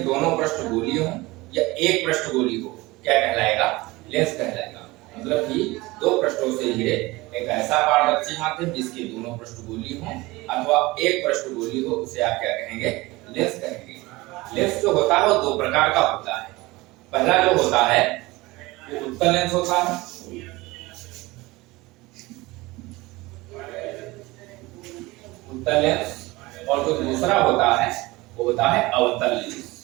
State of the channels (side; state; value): left; quieter; 21.3 dB